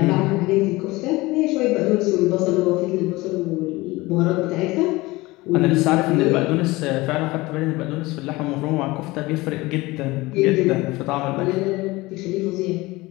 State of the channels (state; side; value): quieter; right; 21.1 dB